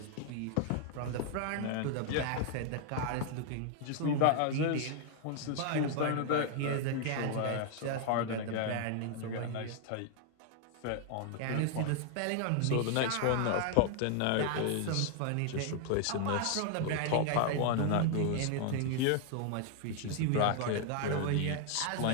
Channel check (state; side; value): different; both; correlation 0.00